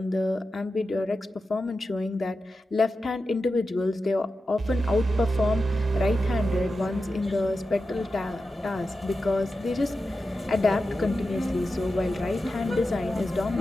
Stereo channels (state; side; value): normal; both; correlation 0.91